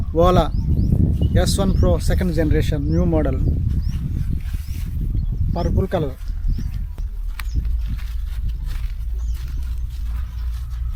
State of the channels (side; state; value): both; identical; correlation 1.00